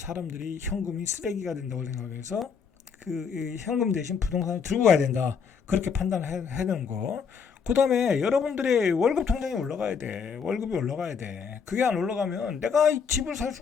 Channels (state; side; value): quieter; right; 6.2 dB